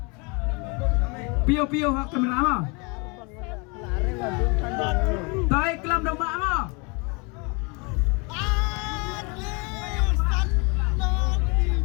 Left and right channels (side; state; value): right; quieter; 30.7 dB